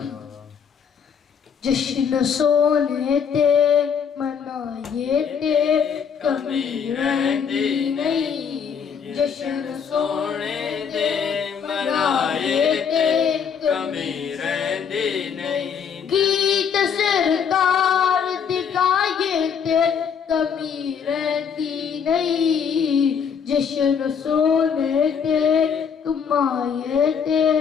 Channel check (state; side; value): quieter; right; 7.0 dB